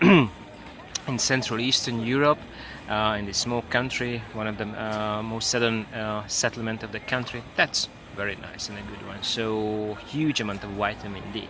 Central Eastern Europe, in this small country, one of the most southern settlement of the country, that's very nice and a good one. So huge amount of vitamin D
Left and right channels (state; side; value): identical; both; correlation 1.00